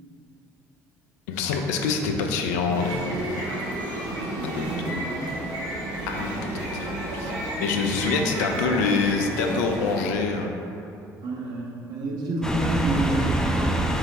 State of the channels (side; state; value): both; normal; correlation 0.43